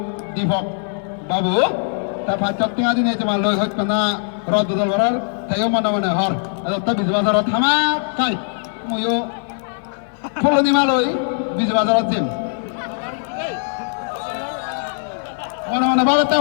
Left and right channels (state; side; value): silent; right; 56 dB below the other